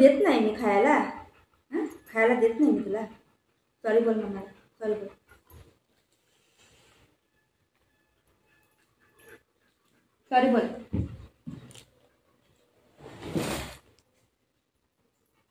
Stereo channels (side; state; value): both; identical; correlation 1.00